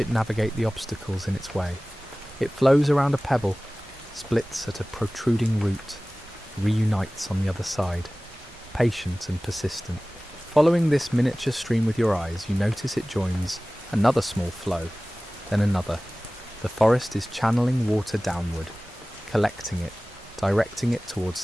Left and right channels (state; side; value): normal; both; correlation 0.98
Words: navigate the obstacles in its way. It flows around a pebble, splits at a protruding root, reunites on the other side, patient and persistent. Following this miniature stream with your eyes, you notice it joins another small flow, then another. The forest is channeling water downward, collecting it, directing it towards